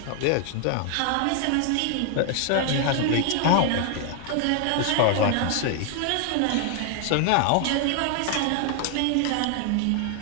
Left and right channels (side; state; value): both; different; correlation 0.00